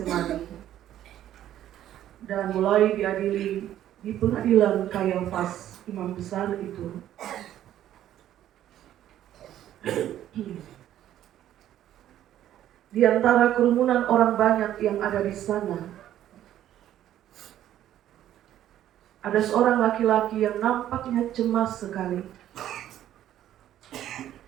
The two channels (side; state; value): left; quieter; 12.0 dB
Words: dan mulai diadili di pengadilan Kayafas, imam besar itu, di antara kerumunan orang banyak yang ada di sana, ada seorang laki-laki yang nampaknya cemas sekali,